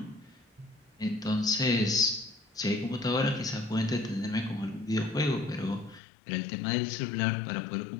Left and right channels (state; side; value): drops out; right; at 6.0 s